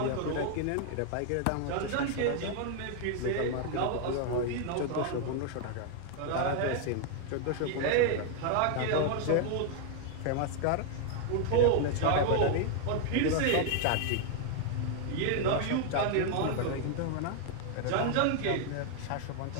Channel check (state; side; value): different; both; correlation 0.00